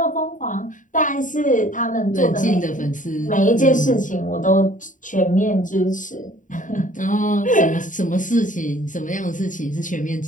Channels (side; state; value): right; late; 0.37 ms